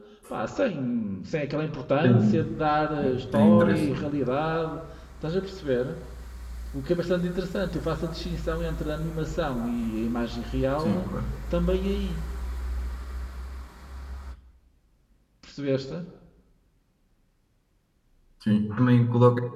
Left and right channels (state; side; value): identical; both; correlation 1.00